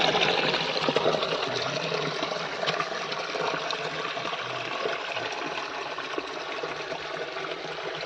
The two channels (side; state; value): both; identical; correlation 1.00